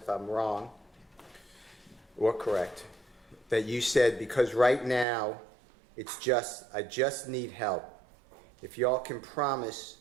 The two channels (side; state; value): left; drops out; at 5.1 s